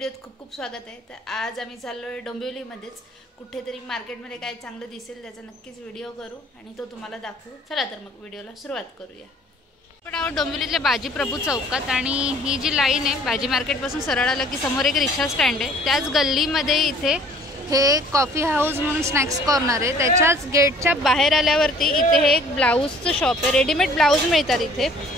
खूप खूप स्वागत आहे। तर आज आम्ही चाललो आहे डोंबिवलीमध्येच, कुठेतरी मार्केटमध्ये काय चांगलं दिसेल त्याचा नक्कीच व्हिडिओ करू आणि तो तुम्हाला दाखवू। चला तर मग व्हिडिओला सुरुवात करूया। आपण आहोत डोंबिवलीतल्या बाजी प्रभू चौकात आणि ही जी लाईन आहे बाजी मार्केटपासून सरळ आलं की समोर एक रिक्षा स्टँड आहे, त्याच गल्लीमध्ये इथे हे कॉफी हाऊस म्हणून स्नॅक्स कॉर्नर आहे। त्याच्याच गेटच्या बाहेर आल्यावरती इथे हे एक ब्लाऊजचं शॉप आहे, रेडीमेड ब्लाऊज मिळतात इथे।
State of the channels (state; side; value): normal; both; correlation 0.54